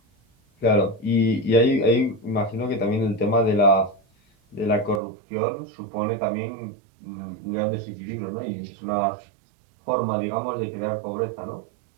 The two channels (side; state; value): left; drops out; at 5.0 s